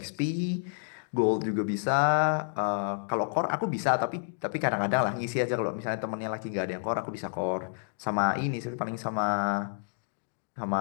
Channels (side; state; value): right; silent; digital silence